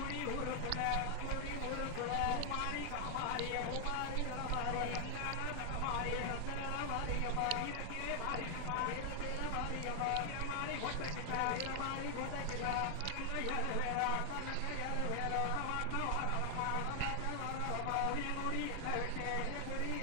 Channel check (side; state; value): both; different; correlation 0.00